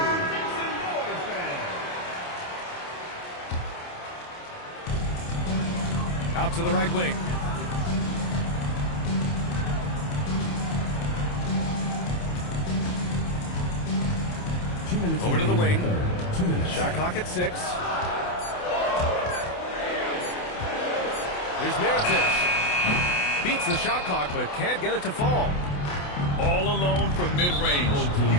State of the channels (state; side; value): late; right; 28 ms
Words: Out to the right wing. Over to the wing. Shot clock at 6. Here's Mirotic. Beats the shot clock, but can't get it to fall. All alone from mid-range.